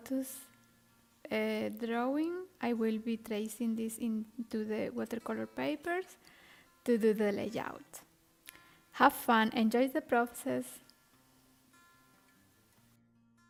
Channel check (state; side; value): identical; both; correlation 1.00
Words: drawing. I will be tracing this into the watercolor papers to do the layout. Have fun, enjoy the process.